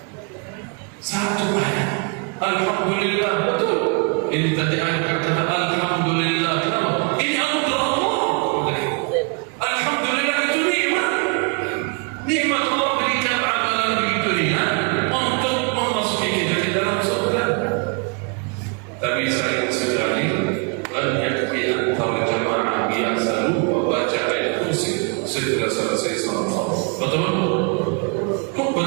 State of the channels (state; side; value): quieter; left; 35.4 dB